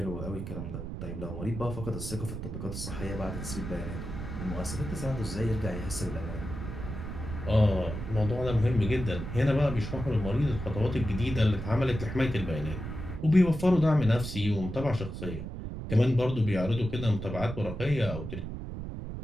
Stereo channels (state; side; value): noise; right; rumble, 7 dB below the sound